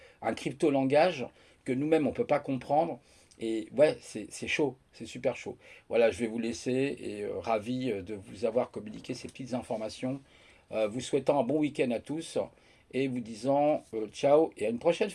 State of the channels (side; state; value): both; identical; correlation 1.00